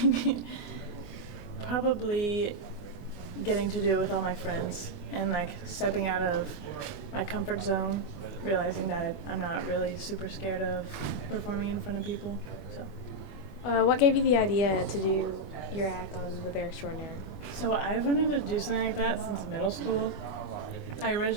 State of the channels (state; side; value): late; right; 21 ms